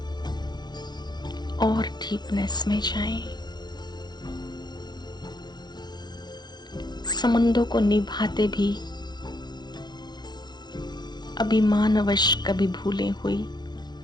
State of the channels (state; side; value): late; right; 0.21 ms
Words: और डीपनेस में जाएं। संबंधों को निभाते भी अभिमानवश कभी भूले हुई,